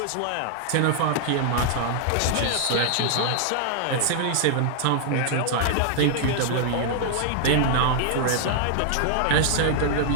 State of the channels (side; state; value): both; different; correlation -0.01